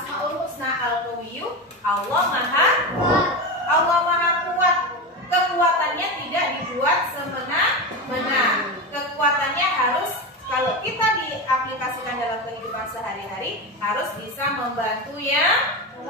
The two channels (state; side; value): normal; both; correlation 0.19